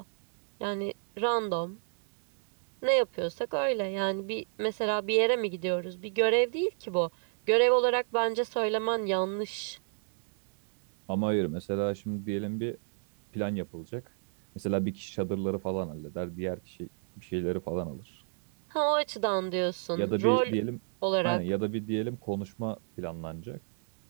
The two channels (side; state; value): left; silent; digital silence